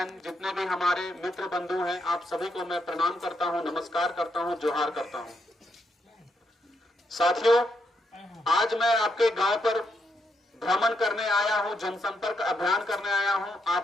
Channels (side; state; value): both; normal; correlation 0.79